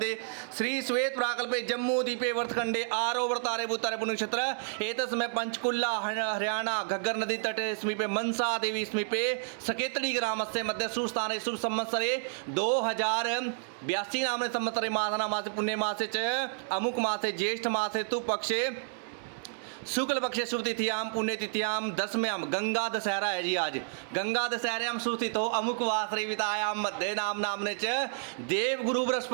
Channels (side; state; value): left; silent; digital silence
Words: श्री श्वेत प्राकल्पे जम्मू द्वीपे वर्तखंडे आरोवर्तारे भूतारे पुण्यक्षेत्र एतस्मै पंचकुल्ला हरियाणा घग्गर नदी तटे समीपे मनसा देवी समीपे सकेतड़ी ग्रामस्य मध्य सुस्थाने शुभ संवत्सरे 2082 नामने संवत्सरे मासना मासे पुण्य मासे च अमुक मासे ज्येष्ठ मासे तु पक्षे शुक्ल पक्षे शुभ तिथियाम पुण्य तिथियाम दसम्याम गंगा दशहरा है जी। आज गंगा दशहरायाम सुस्थित हो अमुक वासरे वितायाम मध्य नाम नामने च देव गुरु